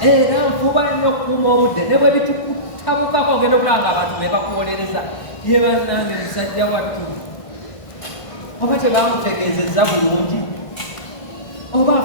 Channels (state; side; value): late; right; 1.5 ms